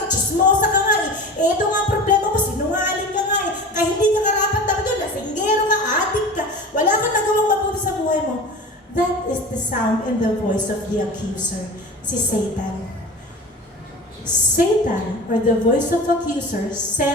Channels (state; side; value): normal; both; correlation 0.35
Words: chismosa ka nga, ito nga ang problema mo, sinungaling ka nga, kaya hindi ka karapat dapat doon, lasinggero ka, adik ka, wala kang nagawang mabuti sa buhay mo. That is the sound and the voice of the accuser, si Satan. Satan, or the voice of accuser,